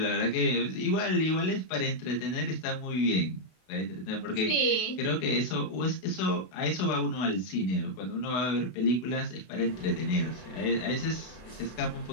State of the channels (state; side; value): late; right; 32 ms